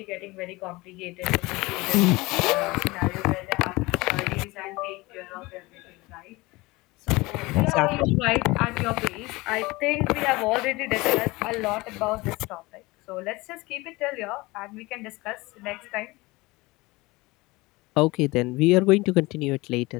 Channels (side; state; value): right; quieter; 22.2 dB